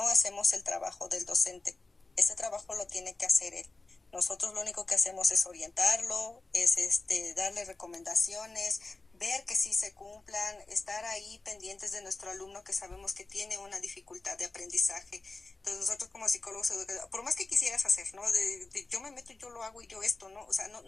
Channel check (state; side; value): quieter; right; 3.4 dB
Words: hacemos el trabajo del docente. Ese trabajo lo tiene que hacer él. Nosotros lo único que hacemos es orientarlo, es darle recomendaciones, ver que sí se cumplan, estar ahí pendientes de nuestro alumno que sabemos que tiene una dificultad de aprendizaje. Entonces nosotros como psicólogos, por más que quisieras hacer, ¿no? Yo me meto y yo lo hago y yo esto, ¿no? O sea,